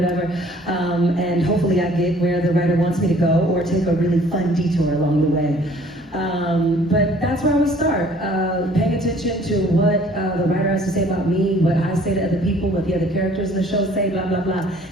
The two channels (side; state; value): both; normal; correlation 0.55